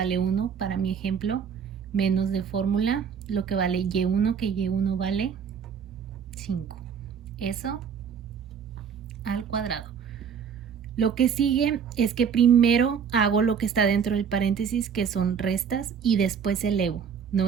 1 para mi ejemplo, menos de fórmula, lo que vale y1, que y1 vale 5. Eso al cuadrado. Lo que sigue es que primero hago lo que está dentro del paréntesis, que son restas, y después elevo. No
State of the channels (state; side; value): quieter; left; 7.2 dB